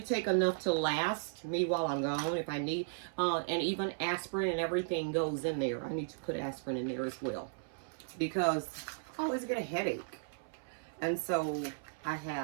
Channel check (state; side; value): silent; left; 54 dB below the other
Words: take enough to last me while I'm gone if I need. And even aspirin and everything goes in there. I need to put aspirin in there as well because I always get a headache. And so I